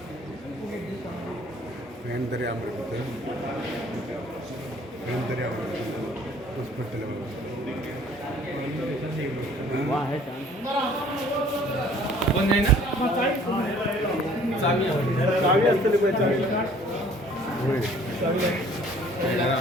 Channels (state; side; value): normal; both; correlation 0.54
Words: फॅन तरी आवडत फॅन तरी आवडत हॉस्पिटल पण नाही ना चावी असते